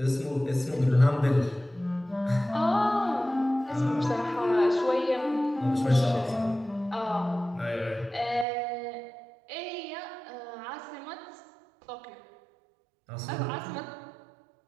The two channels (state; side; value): drops out; left; at 8.5 s